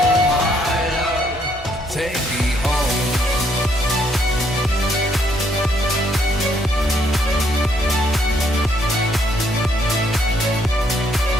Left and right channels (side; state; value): both; normal; correlation 0.70